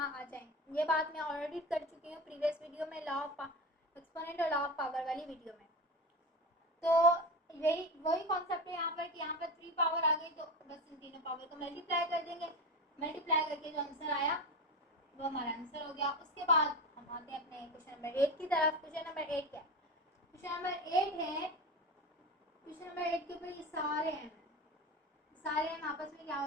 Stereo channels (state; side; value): normal; both; correlation 0.24